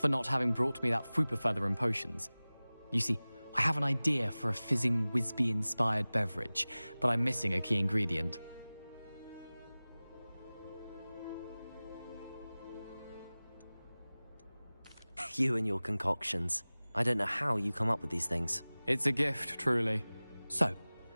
not having brought me that Fwooper feather and potions. You see, I have an idea for a fizzing Wisby-inspired beverage, but I'm missing a key ingredient. You and your concoctions. I don't know how you come up with these things. It's a gift, truly. So,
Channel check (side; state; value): both; inverted; correlation -0.99